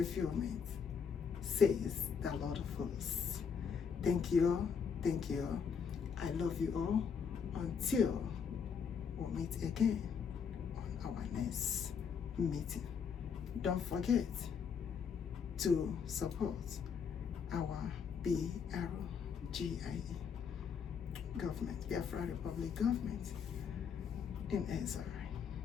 says the Lord of hosts. Thank you all. Thank you all. I love you all. Until we meet again on our next meeting. Don't forget to support our BRGIE government, Biafra Republic government in Israel.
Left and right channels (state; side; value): quieter; right; 6.6 dB